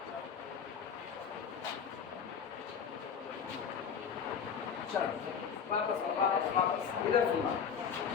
चलो वापस इधर सुनना।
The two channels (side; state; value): right; quieter; 7.0 dB